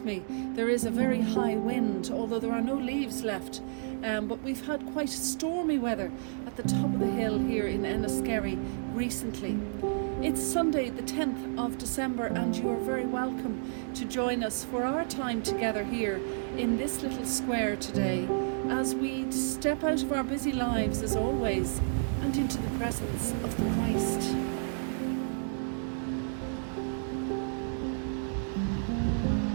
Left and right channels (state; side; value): silent; left; digital silence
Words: me, there is a very high wind, although there are no leaves left. But we've had quite stormy weather at the top of the hill here in Enniskerry recently. It's Sunday the 10th of December and you're very welcome to join us for our time together here in this little square today as we step out of our busy lives as always and into the presence of the Christ.